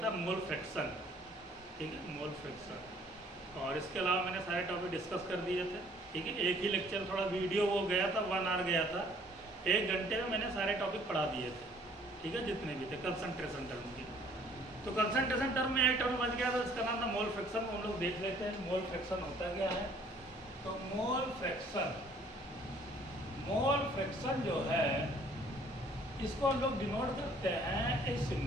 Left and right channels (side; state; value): both; normal; correlation 0.58